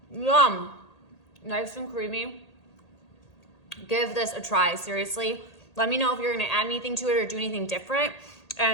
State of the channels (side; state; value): right; late; 1.8 ms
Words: Yum. Nice and creamy. Give this a try, seriously. Let me know if you're gonna add anything to it or do anything different.